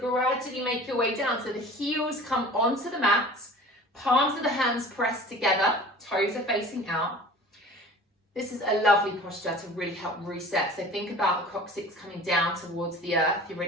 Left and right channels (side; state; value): both; normal; correlation 0.42